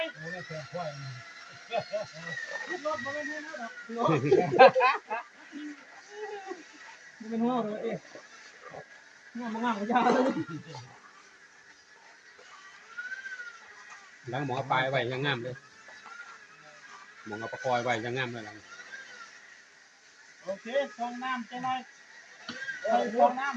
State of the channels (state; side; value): identical; both; correlation 1.00